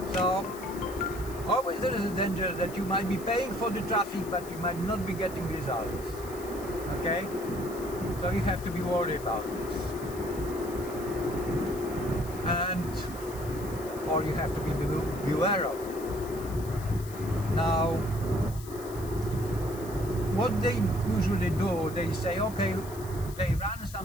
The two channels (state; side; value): noise; left; hiss, 17 dB below the sound